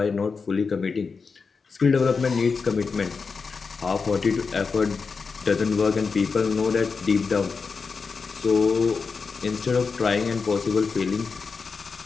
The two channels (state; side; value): quieter; right; 5.0 dB